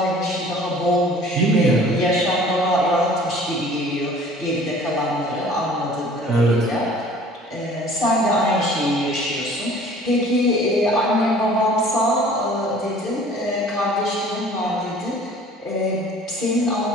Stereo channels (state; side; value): normal; both; correlation 0.50